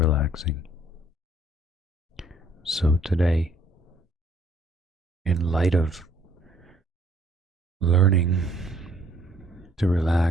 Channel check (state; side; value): normal; both; correlation 0.63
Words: So, today, in light of learning to